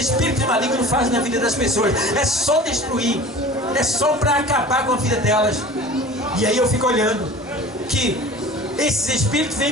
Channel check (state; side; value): normal; both; correlation 0.40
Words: malignos fazem na vida das pessoas, é só destruir, é só para acabar com a vida delas. E aí eu fico olhando que esses espíritos